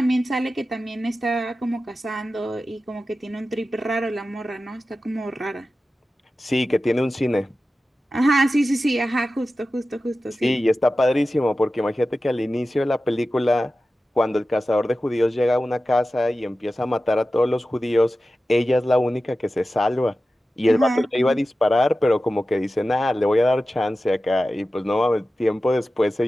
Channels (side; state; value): both; normal; correlation 0.94